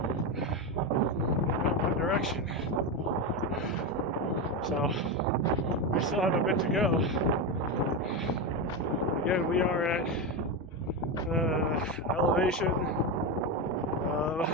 one direction. So we still have a bit to go. Again, we are at elevation of,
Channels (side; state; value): both; normal; correlation 0.13